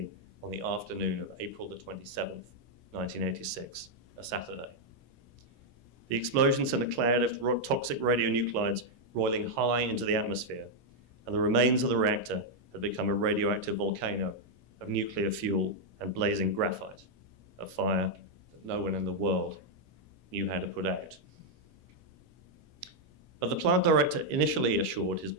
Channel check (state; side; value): normal; both; correlation -0.02